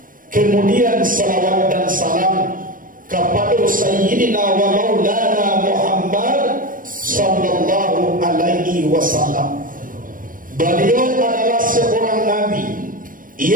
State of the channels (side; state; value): left; late; 0.40 ms